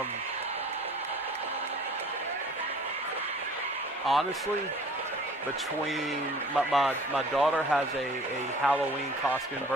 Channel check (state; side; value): normal; both; correlation 0.49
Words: Honestly, between my daughter has a Halloween costume